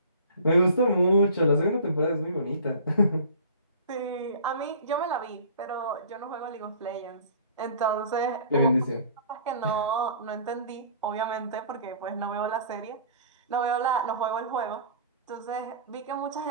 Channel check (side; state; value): both; inverted; correlation -0.45